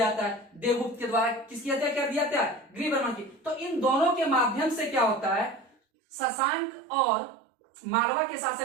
जाता है। देवगुप्त के द्वारा किसकी हत्या कर दिया जाता है, गृहवर्मन की। तो इन दोनों के माध्यम से क्या होता है, शशांक और मालवा के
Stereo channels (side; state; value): left; drops out; at 5.8 s